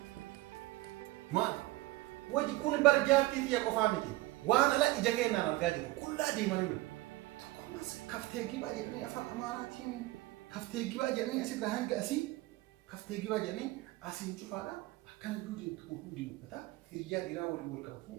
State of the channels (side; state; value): left; quieter; 19.0 dB